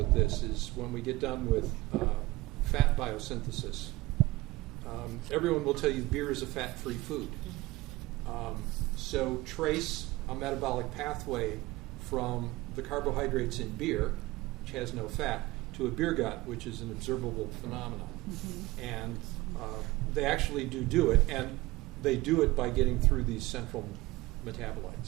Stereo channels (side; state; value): left; quieter; 19.6 dB